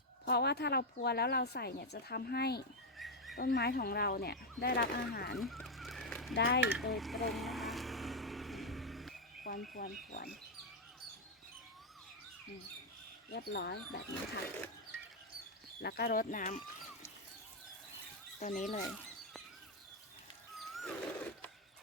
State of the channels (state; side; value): normal; both; correlation 0.02